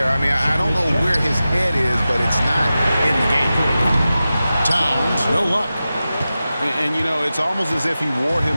I mean, I don't know where his head is, but it's not in the game. Towns, no luck. And you know, it's almost as if he wore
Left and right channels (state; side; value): inverted; both; correlation -0.94